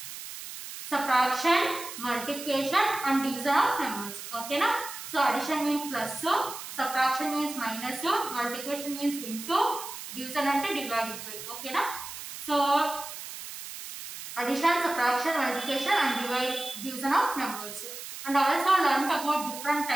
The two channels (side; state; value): right; noise; hiss, 10 dB below the sound